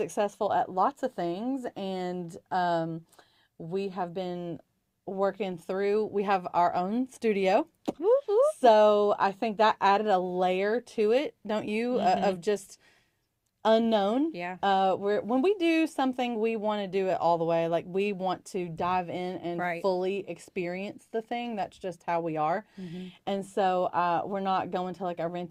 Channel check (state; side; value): identical; both; correlation 1.00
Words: at lots of things, and we have been working through. We have our own studio, so I think that added a layer to it, don't you? Of just unknown. Yeah. When we do something, we want to do it all the way. Like we want to dive in and Right. fully experience the thing. That's just how we are. And so we're not going to like a